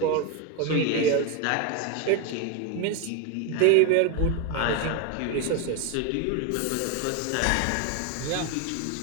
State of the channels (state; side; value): different; both; correlation 0.02